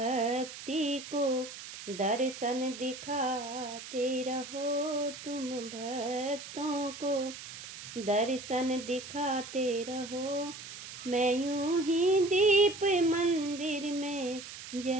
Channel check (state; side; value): noise; right; hiss, 12 dB below the sound